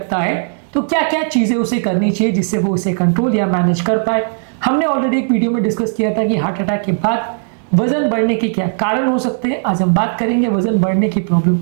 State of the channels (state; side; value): silent; left; digital silence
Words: है तो क्या क्या चीजें उसे करनी चाहिए जिससे वो उसे कंट्रोल या मैनेज कर पाए। हमने ऑलरेडी एक वीडियो में डिस्कस किया था कि हार्ट अटैक के बाद वजन बढ़ने के क्या कारण हो सकते हैं। आज हम बात करेंगे वजन बढ़ने की प्रॉब्लम